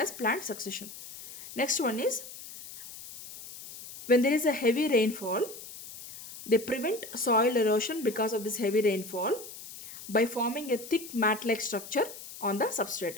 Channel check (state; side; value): noise; left; hiss, 14 dB below the sound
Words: plant succession. Next one is, when there is a heavy rainfall, they prevent soil erosion because of this heavy rainfall by forming a thick mat-like structure on the